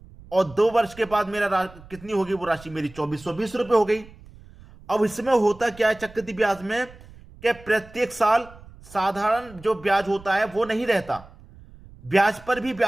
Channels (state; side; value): noise; right; rumble, 21 dB below the sound